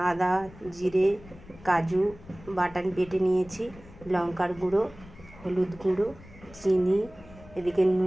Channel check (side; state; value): left; noise; rumble, 20 dB below the sound